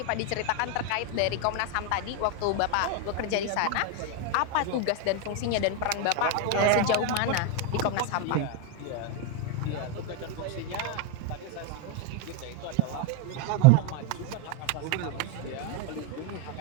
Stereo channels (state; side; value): different; both; correlation 0.01